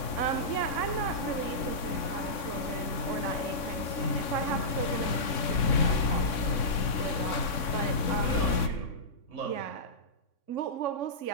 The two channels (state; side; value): late; right; 3.6 ms